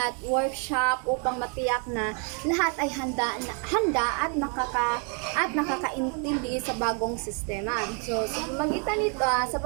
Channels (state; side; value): quieter; left; 39.6 dB